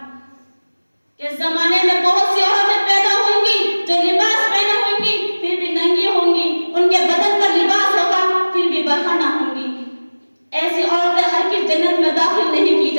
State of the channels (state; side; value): inverted; both; correlation -1.00